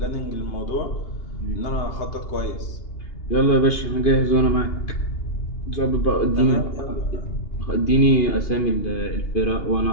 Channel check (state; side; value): late; right; 2.8 ms